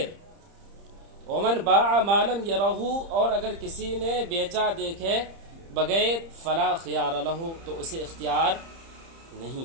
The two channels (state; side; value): late; left; 30 ms